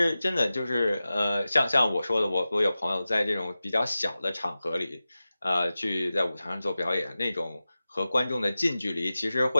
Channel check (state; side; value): inverted; both; correlation -0.95